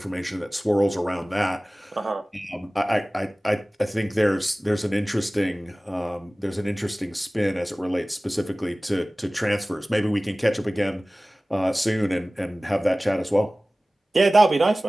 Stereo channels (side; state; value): both; normal; correlation 0.98